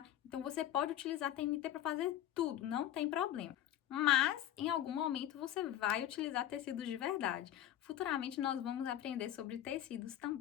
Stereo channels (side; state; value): right; quieter; 12.0 dB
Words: Então, você pode utilizar TNT para fazer tudo, não tem problema. Mas, em algum momento, você vai utilizar tecidos de verdade. Futuramente, nós vamos aprender sobre tecidos